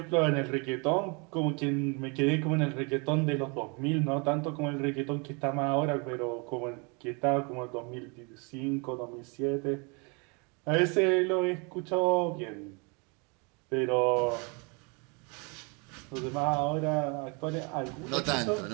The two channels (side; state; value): left; quieter; 32.1 dB